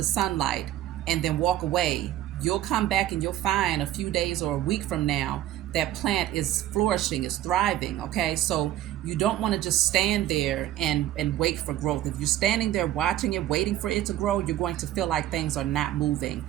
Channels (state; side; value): quieter; left; 13.3 dB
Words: sunlight, and then walk away, you'll come back and you'll find a few days or a week from now that plant is flourishing, is thriving, okay? So you don't want to just stand there and wait for growth. If you're standing there watching it, waiting for it to grow, you're going to feel like things are not moving.